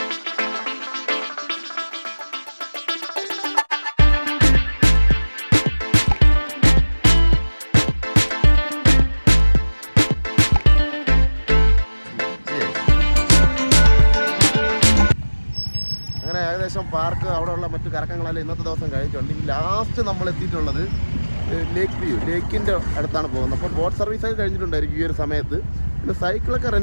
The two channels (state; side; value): inverted; both; correlation -1.00